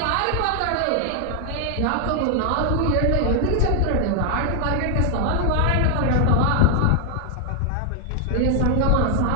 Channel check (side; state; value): both; different; correlation 0.00